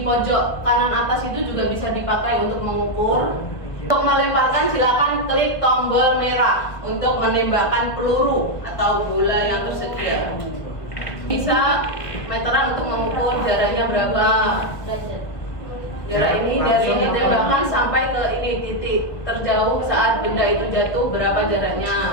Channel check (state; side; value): late; right; 1.7 ms